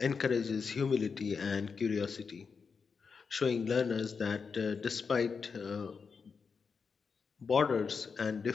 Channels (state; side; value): quieter; right; 5.5 dB